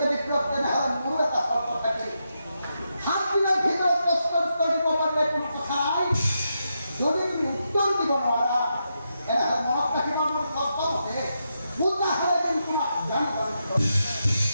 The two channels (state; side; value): inverted; both; correlation -0.84